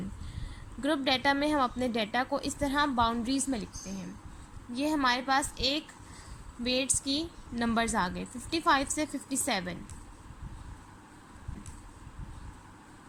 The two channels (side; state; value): both; identical; correlation 1.00